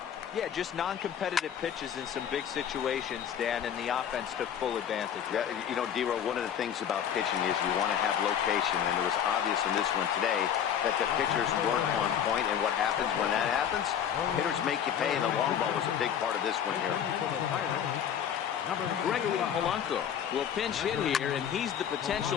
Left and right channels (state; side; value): quieter; right; 9.0 dB